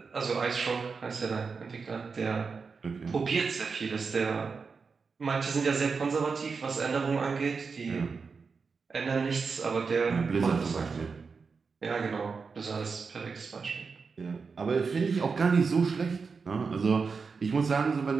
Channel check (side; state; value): left; quieter; 5.0 dB